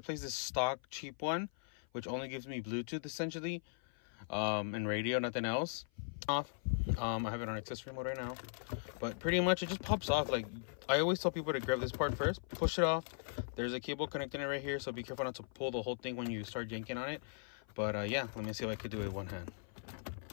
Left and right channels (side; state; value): right; silent; 52 dB below the other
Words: this stock cheap one, which only gives me Bluetooth essentially, and radio, nothing else. I have it on accessory mode right now, but pretty much it just pops off. Like, I always tell people to grab this part first, push it off. There's a cable connecting it right here, so be careful not to pull the whole thing when you start yanking on it. But yeah, let me see if I could do it with one hand.